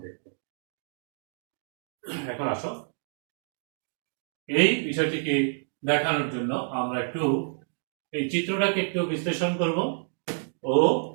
দেখব। এখন আসো এই বিষয়টিকে দেখানোর জন্য আমরা একটু এই চিত্রটাকে একটু বিশ্লেষণ করব। ও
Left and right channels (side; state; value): left; silent; digital silence